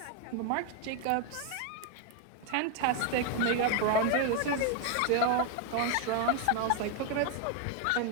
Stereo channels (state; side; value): different; both; correlation 0.01